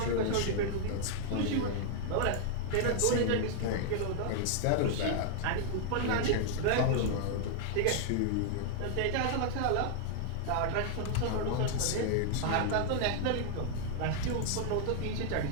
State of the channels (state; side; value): different; both; correlation -0.01